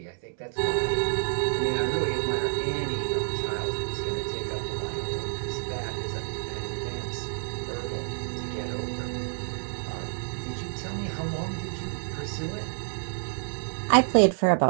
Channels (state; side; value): silent; left; digital silence